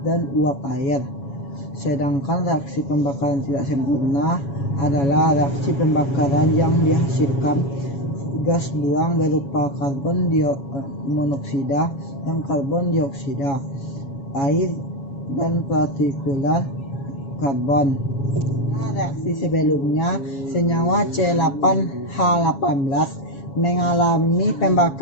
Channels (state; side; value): late; right; 7.2 ms